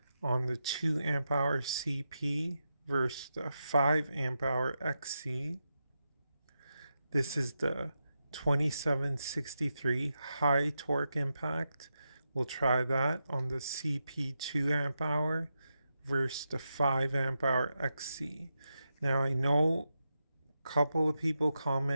on the 2 amp hour CP versus the 5 amp hour XC. This is the 2763 high torque impact. We'll try that on the CP 2 amp hour versus the 5 amp hour XC. Now I know a couple of people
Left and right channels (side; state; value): both; inverted; correlation -0.87